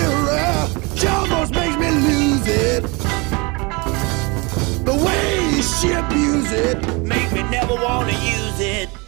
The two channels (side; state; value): left; quieter; 27.8 dB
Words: She almost makes me lose it. The way she abuse it make me never want to use it.